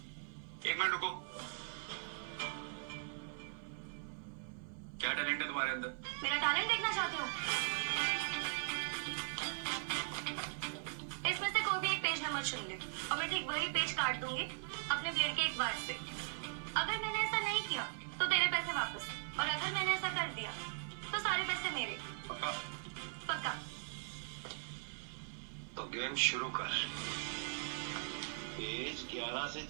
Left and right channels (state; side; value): silent; left; 51 dB below the other